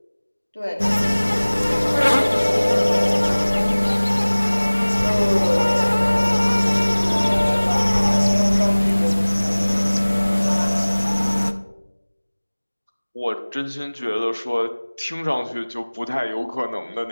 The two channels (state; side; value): inverted; both; correlation -1.00